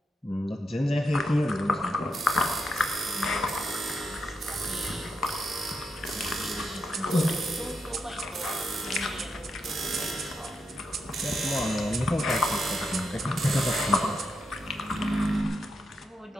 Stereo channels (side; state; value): both; normal; correlation 0.82